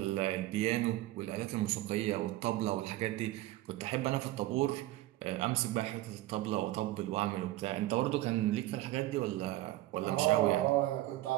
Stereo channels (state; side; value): quieter; left; 16.3 dB